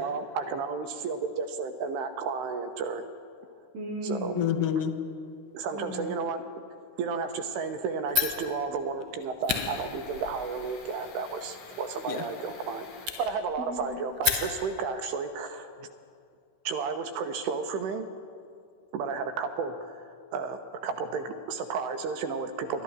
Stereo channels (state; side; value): late; left; 16 ms